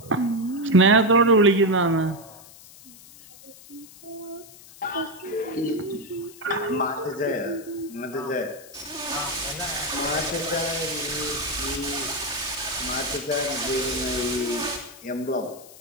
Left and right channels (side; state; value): left; noise; hiss, 20 dB below the sound